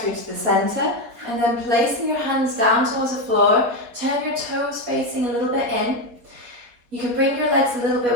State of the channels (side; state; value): left; late; 4.2 ms